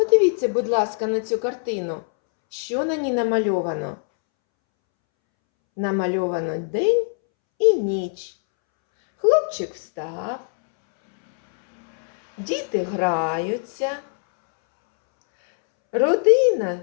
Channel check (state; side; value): silent; right; 64 dB below the other